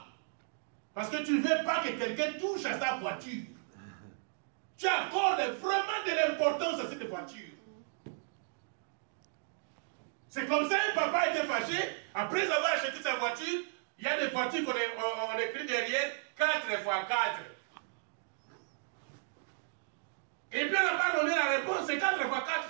Parce que tu ne veux pas que quelqu'un touche à sa voiture. Tu accordes vraiment de l'importance à cette voiture. C'est comme ça un papa était fâché. Après avoir acheté sa voiture, il y a des voitures qu'on écrit derrière 4x4. Et puis on n'a pas donné la réponse. C'est 4x4,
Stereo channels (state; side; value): silent; left; digital silence